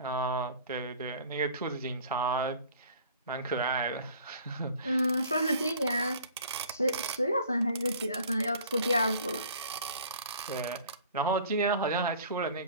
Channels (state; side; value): inverted; both; correlation -0.49